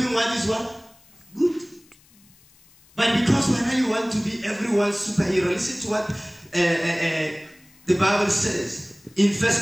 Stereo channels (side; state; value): left; noise; hiss, 29 dB below the sound